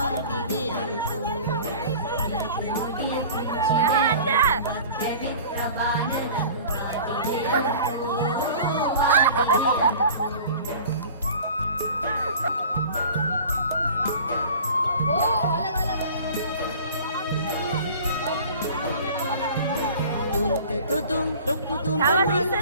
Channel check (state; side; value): inverted; both; correlation -0.43